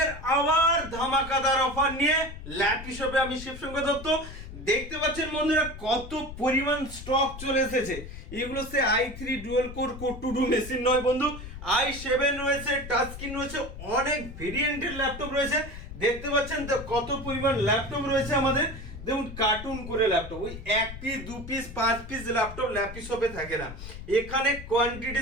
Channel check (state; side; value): noise; left; rumble, 12 dB below the sound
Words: আবার ধামাকাদার offer নিয়ে ল্যাপি শপে আমি শিবশঙ্কর দত্ত। দেখতে পাচ্ছেন বন্ধুরা কত পরিমাণ স্টক চলে এসেছে। এগুলো সে i3 dual core core to do machine নয় বন্ধু, i7 রয়েছে, টাচ স্ক্রিন রয়েছে, অনেক ভেরিয়েন্টের ল্যাপটপ রয়েছে। দেখতে পাচ্ছেন তো কত পরিমাণ ল্যাপটপ রয়েছে আমাদের। দেখুন কার্টুন করে ল্যাপটপ, ওই 1 piece 2 piece 5 piece laptop lappy শপে থাকে না, এখানে